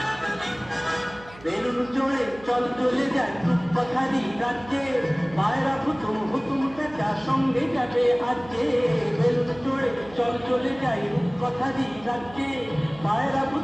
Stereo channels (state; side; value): noise; right; hum, 21 dB below the sound